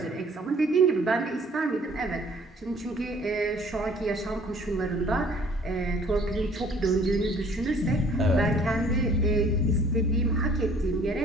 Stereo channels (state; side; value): normal; both; correlation 0.55